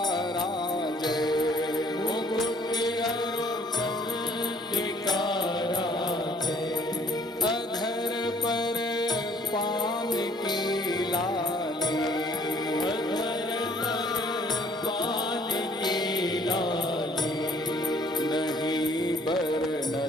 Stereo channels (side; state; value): both; normal; correlation 0.59